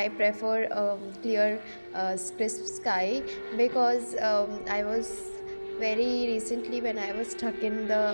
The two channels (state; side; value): inverted; both; correlation -1.00